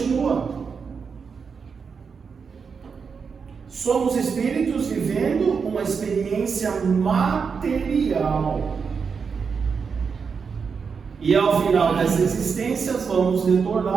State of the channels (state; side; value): quieter; left; 5.8 dB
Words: Somos espíritos vivendo uma experiência material. E ao final dessa existência vamos